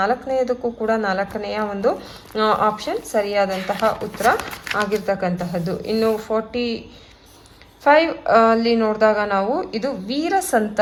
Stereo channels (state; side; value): identical; both; correlation 1.00